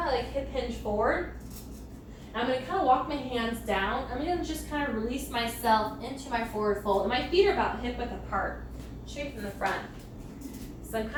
of like hip hinge forward. I'm gonna kind of walk my hands down. I'm gonna just kind of release myself into my forward fold. And my feet are about hip width apart, straight from the front. So I'm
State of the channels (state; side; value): identical; both; correlation 1.00